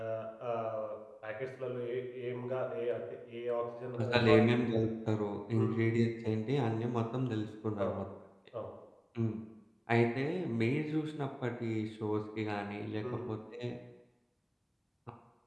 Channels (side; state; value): both; identical; correlation 1.00